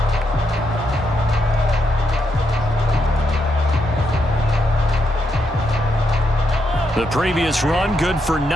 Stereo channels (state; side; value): normal; both; correlation 0.80